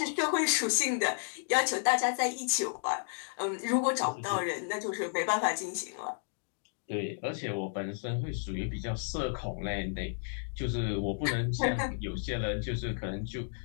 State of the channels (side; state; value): right; silent; digital silence